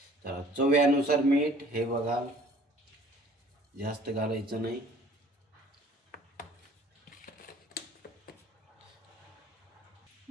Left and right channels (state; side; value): normal; both; correlation 0.53